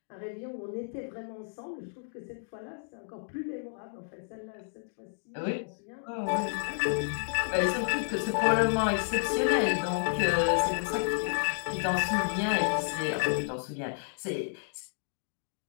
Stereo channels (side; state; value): right; silent; digital silence